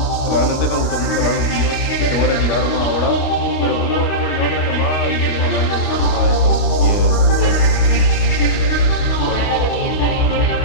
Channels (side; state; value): right; late; 28 ms